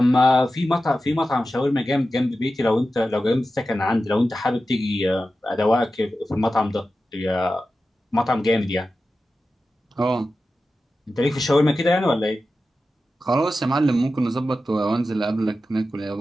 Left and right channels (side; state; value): both; normal; correlation 0.93